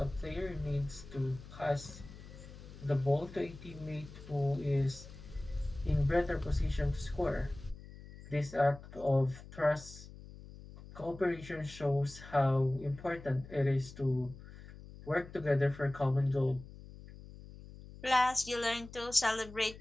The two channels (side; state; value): left; noise; hum, 16 dB below the sound